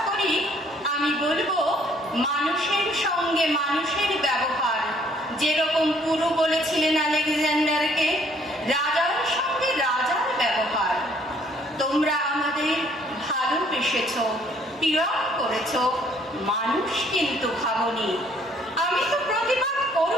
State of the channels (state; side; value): normal; both; correlation 0.62